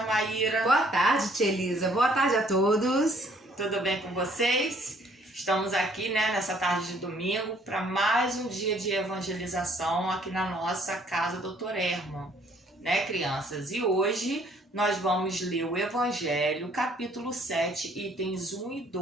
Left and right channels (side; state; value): both; normal; correlation 0.62